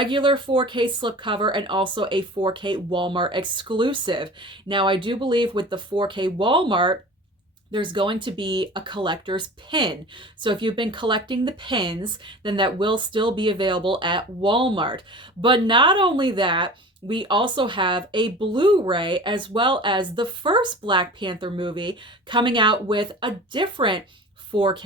4K slipcover and also a 4K Walmart exclusive. Now, I do believe with the 4K Walmart, there's going to be a collector's pin. So if you've been collecting the pins, then that will still be available at Walmart. But not only that, we also have a Blu-ray as well as the first Black Panther movie coming out with a different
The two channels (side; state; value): both; normal; correlation 0.38